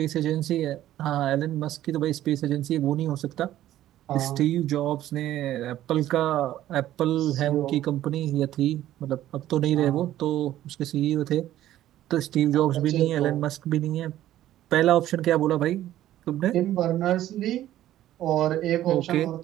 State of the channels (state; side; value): quieter; left; 13.3 dB